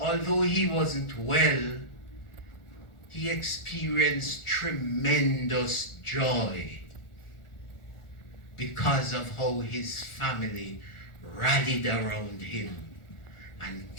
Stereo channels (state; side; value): late; right; 1.4 ms